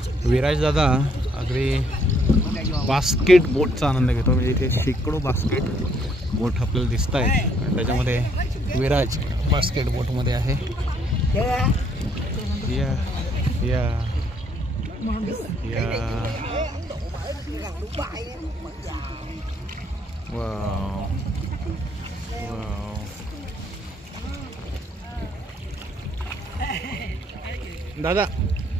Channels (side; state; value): both; normal; correlation 0.67